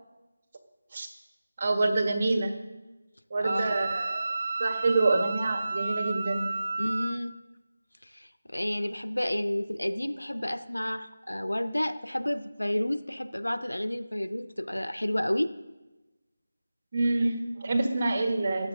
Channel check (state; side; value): inverted; both; correlation -0.95